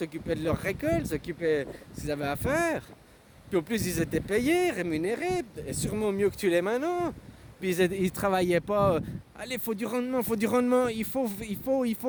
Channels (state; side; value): identical; both; correlation 1.00